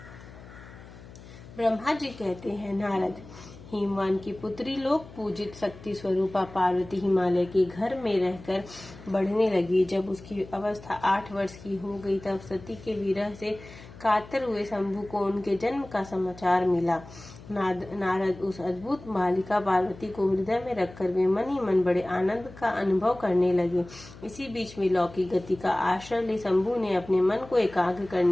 ब्रह्मा जी कहते हैं, नारद, हिमवान की पुत्री लोक पूजित शक्ति स्वरूपा पार्वती हिमालय के घर में रहकर बढ़ने लगी। जब उसकी अवस्था 8 वर्ष की हो गई तब सती के विरह से कातर हुए शंभु को उनके जन्म का समाचार मिला। नारद उस अद्भुत बालिका पार्वती को हृदय में रखकर वे मन ही मन बड़े आनंद का अनुभव करने लगे। इसी बीच में लौकिक गति का आश्रय ले शंभु ने अपने मन को एकाग्र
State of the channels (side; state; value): left; noise; hum, 18 dB below the sound